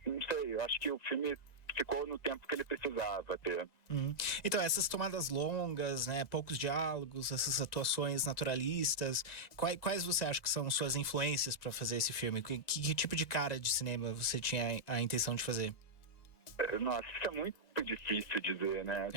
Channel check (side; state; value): right; late; 2.0 ms